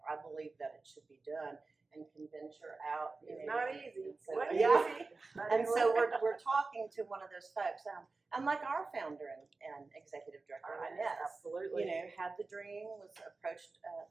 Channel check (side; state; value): left; quieter; 3.8 dB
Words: I believe that it should be done, and convince her out. It's not easy. And so, Wasn't yeah. easy. And so we're talking to one of those folks, and like our founder and executive director, Inez, Absolutely. had the dream, was approached